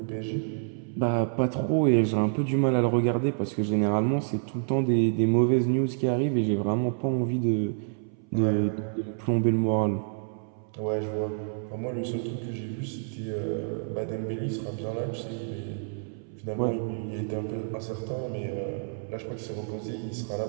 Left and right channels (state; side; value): silent; left; 59 dB below the other